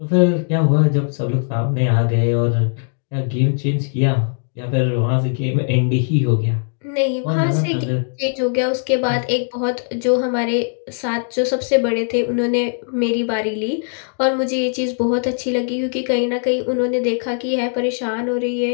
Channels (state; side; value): silent; right; 62 dB below the other